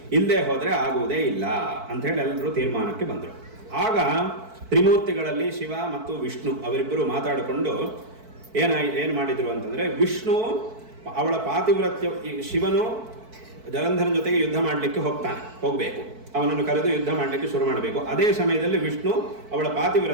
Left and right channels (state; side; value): late; left; 4.5 ms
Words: ಇಲ್ಲದೆ ಹೋದರೆ ಆಗುವುದೇ ಇಲ್ಲ ಅಂಥೇಳಿ ಎಲ್ಲರೂ ತೀರ್ಮಾನಕ್ಕೆ ಬಂದರು. ಆಗ ತ್ರಿಮೂರ್ತಿಗಳಲ್ಲಿ ಶಿವ ಮತ್ತು ವಿಷ್ಣು ಅವರಿಬ್ಬರು ಮಾತಾಡಿಕೊಂಡು ಏನು ಮಾಡಿದ್ರು ಅಂತಂದರೆ, ವಿಷ್ಣು ಅವಳ ಪಾತಿವ್ರತ್ಯ, ಶಿವನು ಜಲಂಧರನ ಜೊತೆಗೆ ಯುದ್ಧ ಮಾಡಲಿಕ್ಕೆ ಹೋಗಬೇಕು, ಅವನನ್ನು ಕರೆದು ಯುದ್ಧ ಮಾಡಲಿಕ್ಕೆ ಶುರು ಮಾಡಬೇಕು. ಅದೇ ಸಮಯದಲ್ಲಿ ವಿಷ್ಣು ಅವಳ